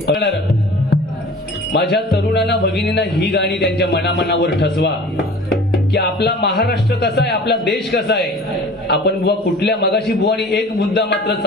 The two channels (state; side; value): normal; both; correlation 0.43